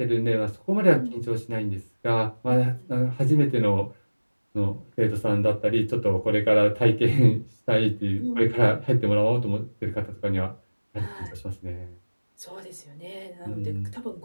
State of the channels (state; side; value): inverted; both; correlation -1.00